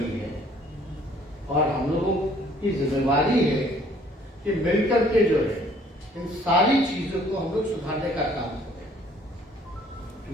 है और हम लोगों की जिम्मेवारी है कि मिलकर के जो है इन सारी चीजों को हम लोग सुधारने का काम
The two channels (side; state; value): both; normal; correlation 0.59